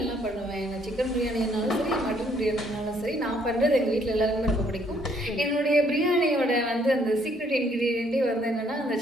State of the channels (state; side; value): normal; both; correlation 0.67